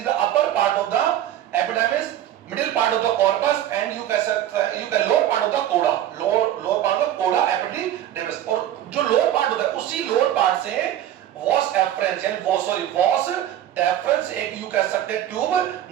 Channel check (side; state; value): left; quieter; 11.8 dB